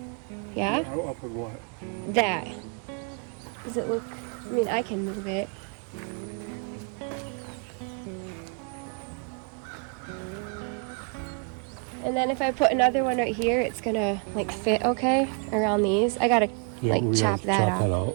Yeah? Up with what? That. Does it look, I mean, I can move it. And then if I put another one right here, it's gonna like fit okay around these. I gotta chop that off. All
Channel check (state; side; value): quieter; left; 35.5 dB